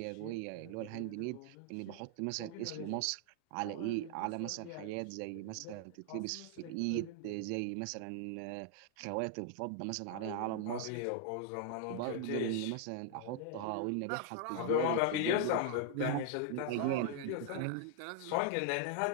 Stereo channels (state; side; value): different; both; correlation 0.00